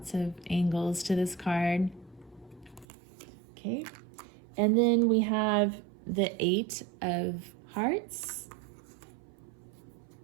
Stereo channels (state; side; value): drops out; left; at 2.9 s